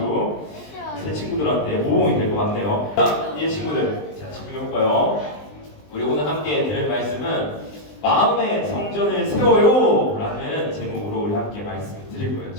새 친구들한테 모범이 될 것 같네요. 자, 이제 친구들, 자, 집중해볼까요? 우리 오늘 함께 들을 말씀은 마음의 성전을 세워요 라는 제목으로 우리 함께 말씀을 드릴 거예요.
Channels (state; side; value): late; right; 20 ms